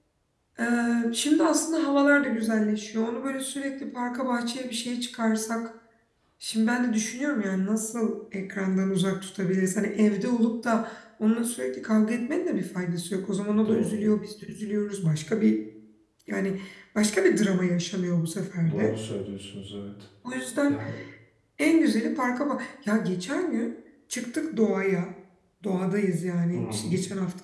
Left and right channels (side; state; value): both; identical; correlation 1.00